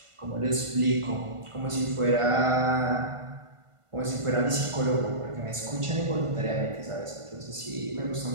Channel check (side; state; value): left; late; 1.5 ms